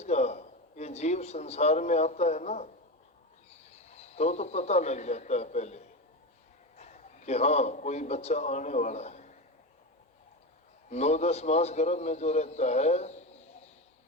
का ये जीव संसार में आता है ना, तो पता लग जाता है पहले कि हाँ कोई बच्चा आने वाला है। 9-10 मास गर्भ में जो रहता है,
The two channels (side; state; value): both; normal; correlation 0.19